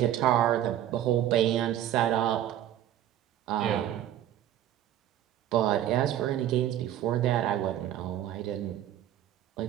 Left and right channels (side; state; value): left; quieter; 11.9 dB